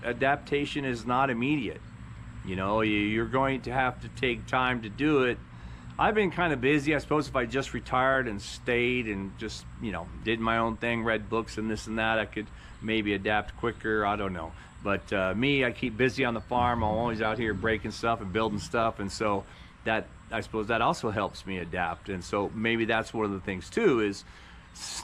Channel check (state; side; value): identical; both; correlation 1.00